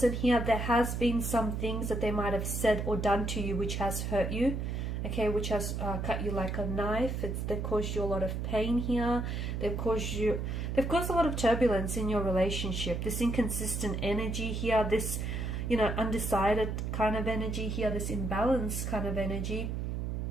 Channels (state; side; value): noise; right; hum, 2 dB below the sound